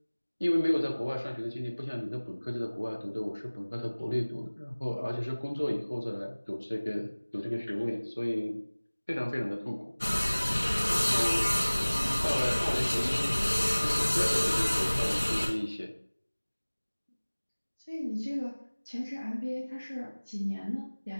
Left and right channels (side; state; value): both; inverted; correlation -1.00